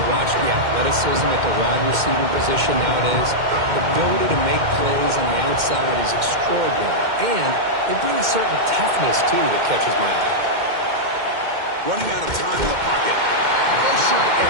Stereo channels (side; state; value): left; late; 2.1 ms